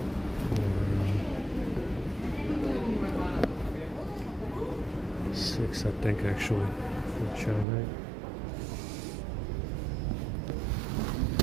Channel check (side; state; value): left; drops out; at 7.7 s